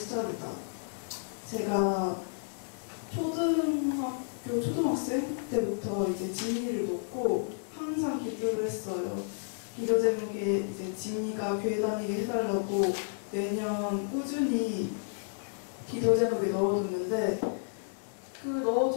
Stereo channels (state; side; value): silent; right; digital silence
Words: 제가 초등학생 때부터 이제 지민이를 놓고 항상 기도를 했어요. 기도 제목에 이제 지민이가 교회 다니게 해달라고 매년 꾸준히 기도 제목에 넣어뒀는데, 그